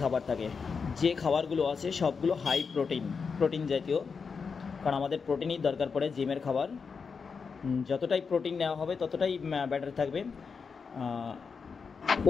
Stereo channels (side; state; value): right; quieter; 5.5 dB